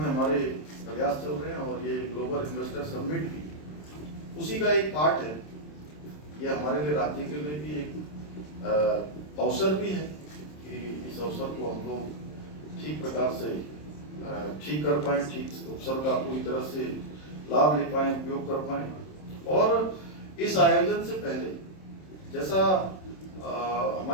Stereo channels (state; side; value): late; right; 27 ms